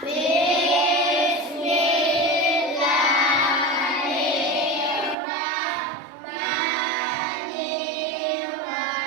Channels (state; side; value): drops out; left; at 5.2 s